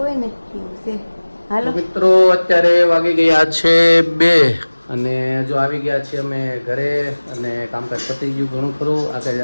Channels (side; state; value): both; inverted; correlation -1.00